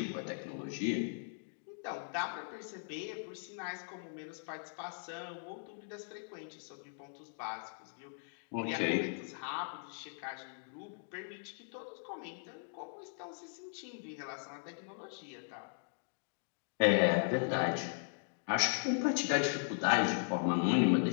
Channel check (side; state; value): right; silent; digital silence